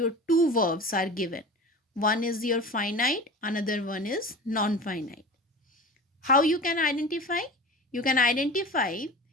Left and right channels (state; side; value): normal; both; correlation 0.35